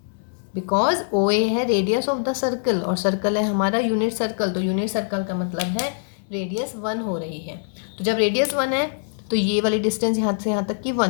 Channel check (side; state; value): right; silent; digital silence